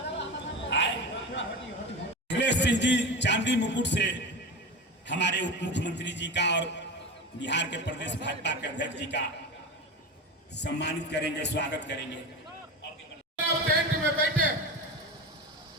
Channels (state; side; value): normal; both; correlation 0.26